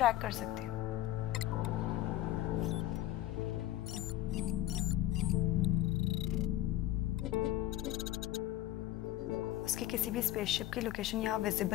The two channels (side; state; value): right; quieter; 14.8 dB